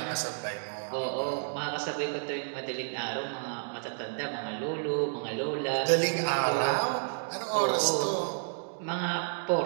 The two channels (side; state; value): left; silent; digital silence